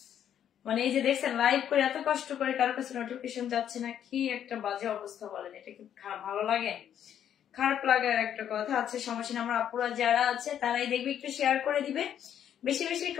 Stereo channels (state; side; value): quieter; right; 9.7 dB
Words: মানে এই যে দেখছেন লাইভ করে এত কষ্ট করে কারো কাছে নোটিফিকেশন যাচ্ছে না, কি একটা বাজে অবস্থা বলেন। এটা কি ভালো লাগে? খারাপ লাগার একটা কথা আছে, সমস্যা না। আমার আপুরা যারা আছে তারাই দেখবে, একটু শেয়ার করে দিবে, বেশি বেশি